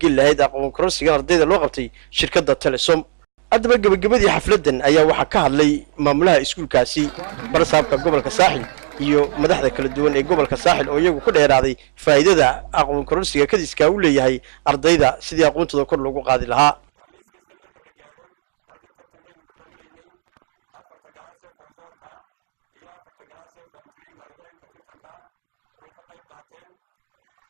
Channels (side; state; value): left; silent; digital silence